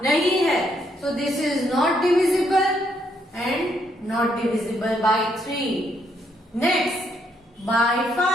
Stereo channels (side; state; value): both; normal; correlation 0.73